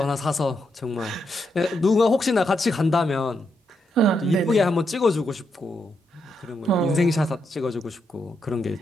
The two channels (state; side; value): normal; both; correlation 0.81